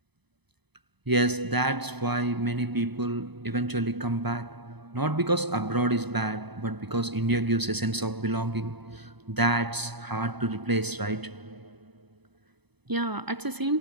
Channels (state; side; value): late; left; 0.99 ms